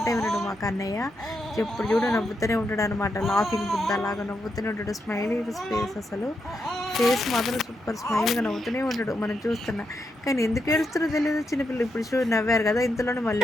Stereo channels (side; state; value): both; normal; correlation 0.83